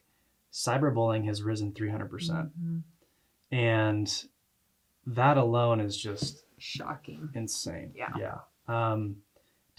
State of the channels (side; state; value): both; identical; correlation 1.00